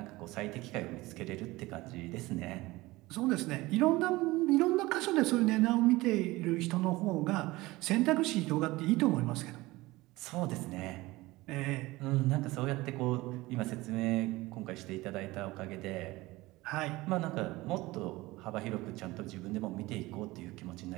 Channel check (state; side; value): quieter; left; 20.1 dB